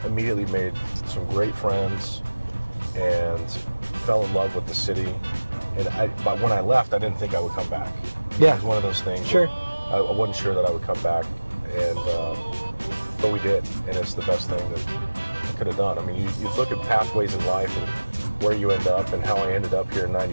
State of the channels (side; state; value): both; inverted; correlation -1.00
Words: immediately made some great friends and fell in love with the city. But when I left, I didn't think I would come back. Yeah. It was one of those things. Sure. I wasn't sure that I would come back, but we did, and it's the best thing that I could have done. I mean, you look at pathways in life and where you end up, and how I ended up here in